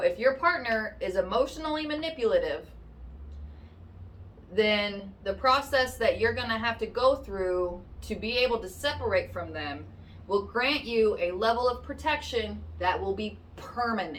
if your partner is emotionally manipulative, then the process that you're going to have to go through to be able to separate from them will grant you a level of protection that will be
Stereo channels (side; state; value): both; identical; correlation 1.00